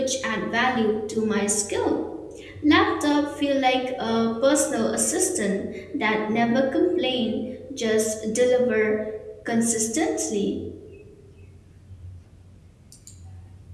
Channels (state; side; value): identical; both; correlation 1.00